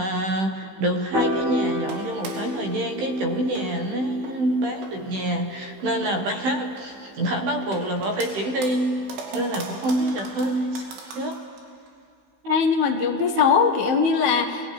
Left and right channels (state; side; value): late; left; 15 ms